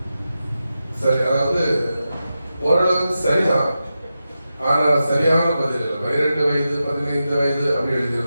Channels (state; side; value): inverted; both; correlation -0.91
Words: சரி, அதாவது ஓரளவுக்கு சரிதான், ஆனா சரியான பதில் 12 வயது 15 வயது அப்படி